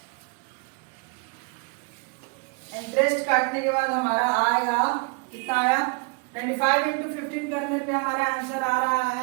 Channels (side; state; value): left; quieter; 32.7 dB